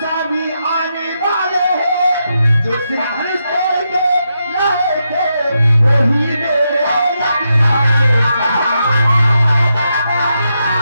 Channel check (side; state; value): both; inverted; correlation -0.84